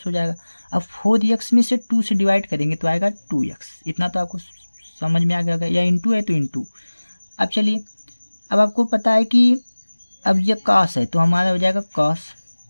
हो जाएगा। अब 4x में से 2 से डिवाइड करेंगे तो आएगा 2x। इतना तो आपको समझ में आ गया होगा, या इंटू है तो इंटू। अब चलिए, अब आपको पता है कि अब ये कॉस है तो हमारा हो जाएगा कॉस।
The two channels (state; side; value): inverted; both; correlation -1.00